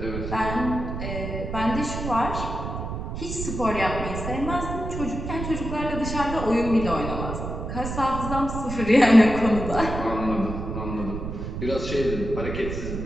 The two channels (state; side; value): noise; right; rumble, 5 dB below the sound